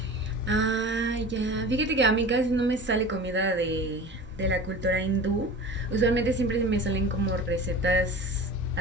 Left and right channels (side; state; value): both; normal; correlation 0.37